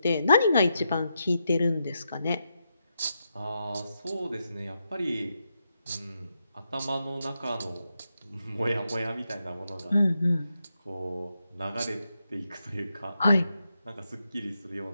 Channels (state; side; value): inverted; both; correlation -0.84